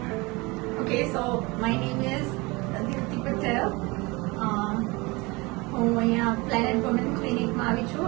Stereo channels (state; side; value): quieter; left; 24.8 dB